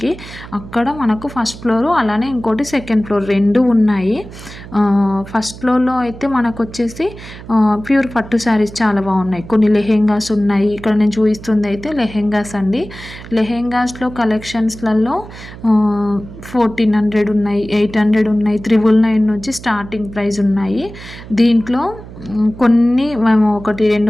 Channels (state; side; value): noise; right; hum, 15 dB below the sound